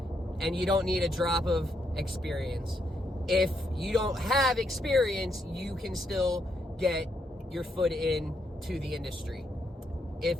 And you don't need a drop of experience. If you don't have experience, you can still get your foot into the industry if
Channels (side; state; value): both; normal; correlation 0.77